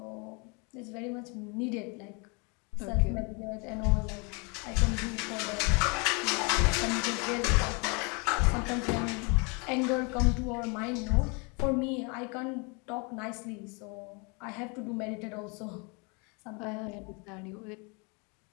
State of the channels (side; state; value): right; quieter; 32.1 dB